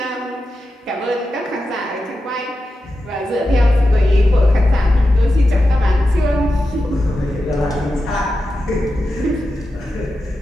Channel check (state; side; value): normal; both; correlation 0.90